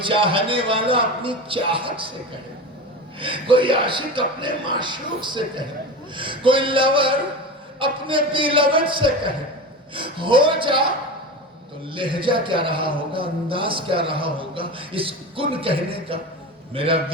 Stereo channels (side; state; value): both; normal; correlation 0.27